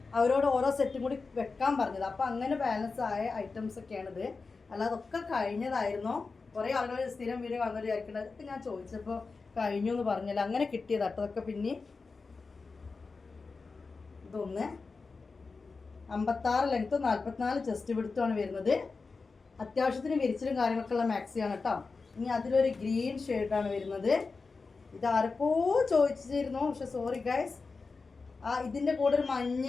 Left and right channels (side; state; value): right; quieter; 4.3 dB